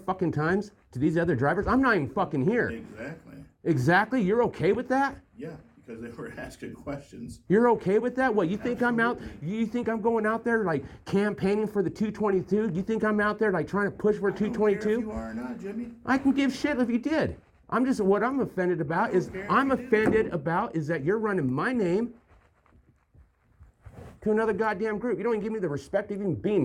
times to these other drivers. I'm not even fucking here. Exactly. Exactly? You're okay with that? Yeah, because they were asking questions. You're okay with that? What, you think I'm out, you think I'm going out there like campaigning for the 222? You think I'm out there like trying to push for I don't care 222? if you are or not, Jimmy. I can give shit if you did. What I'm offended about is that you're running my name to another goddamn group. You don't even give me the respect of even being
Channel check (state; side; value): identical; both; correlation 1.00